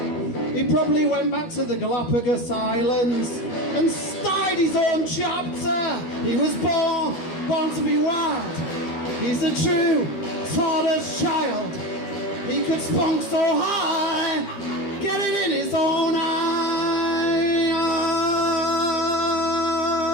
He probably went back to the Galapagos Islands and started his own chapter. He was born to be wild. He's a true tortoise child. He could spunk so high, get it in his own eye.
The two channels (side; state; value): right; late; 13 ms